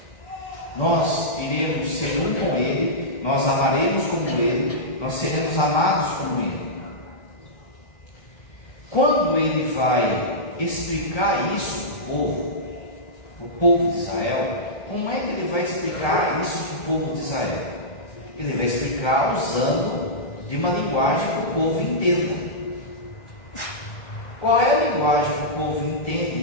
Nós iremos ser um com Ele, nós amaremos como Ele, nós seremos amados como Ele. Quando Ele vai explicar isso para o povo de Israel, como é que Ele vai explicar isso para o povo de Israel? Ele vai explicar usando de uma linguagem que o povo entenda. Qual é a linguagem que o povo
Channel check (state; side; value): late; right; 2.2 ms